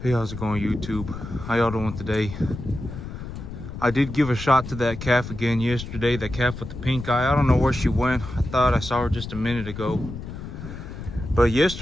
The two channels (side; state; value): left; noise; rumble, 9 dB below the sound